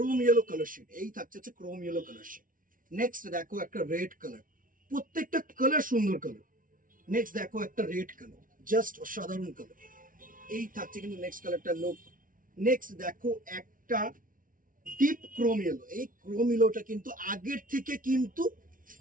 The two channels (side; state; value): left; late; 0.39 ms